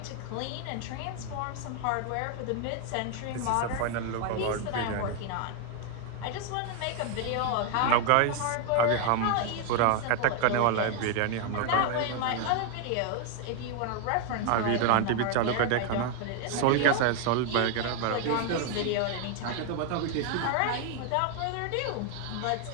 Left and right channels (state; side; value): different; both; correlation 0.00